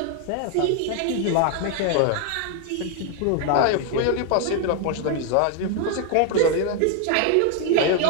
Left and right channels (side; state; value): both; different; correlation 0.00